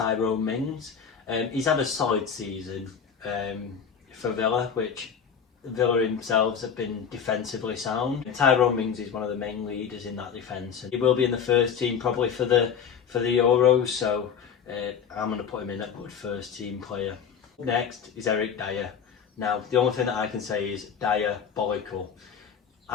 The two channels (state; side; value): quieter; right; 7.2 dB